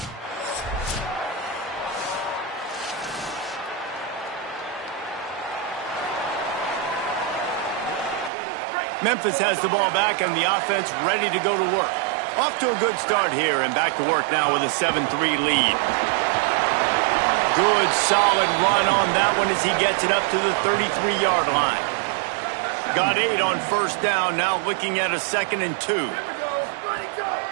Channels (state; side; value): drops out; left; at 8.3 s